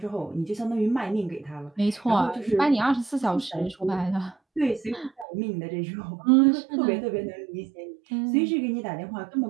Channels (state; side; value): drops out; left; at 5.2 s